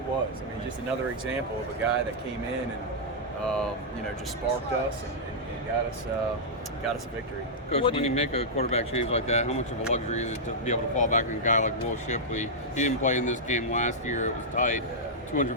was. I mean, just another example of a guy that came in and just sparked us and got us a victory. Coach, when you make a quarterback change like that, how much of a luxury is it to be able to fall back on a guy like Will Shipley? He didn't play in this game last year. It was tight.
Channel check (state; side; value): normal; both; correlation -0.09